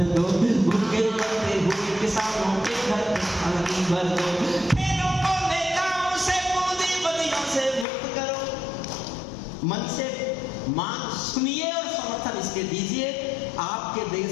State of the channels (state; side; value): drops out; right; at 7.9 s